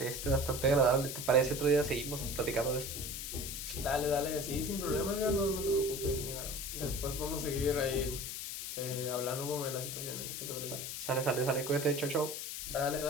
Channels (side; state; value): left; noise; hiss, 6 dB below the sound